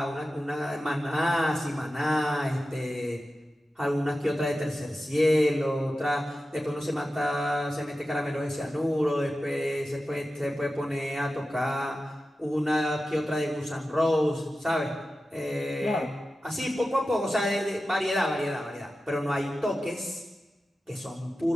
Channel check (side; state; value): both; normal; correlation 0.93